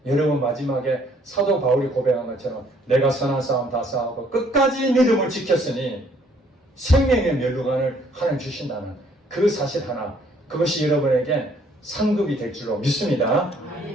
여러분 마지막에 사도 바울이 고백한 것처럼 내가 선한 싸움 다 싸우고 끝까지 믿음을 지켰으니 생명의 면류관을 하나님 주신다는 그 사실 하나, 그것이 여러분에게 상급이 될 줄로 믿습니다.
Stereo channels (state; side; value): normal; both; correlation 0.63